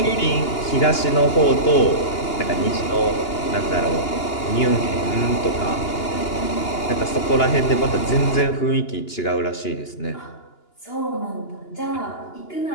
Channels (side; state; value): right; late; 2.9 ms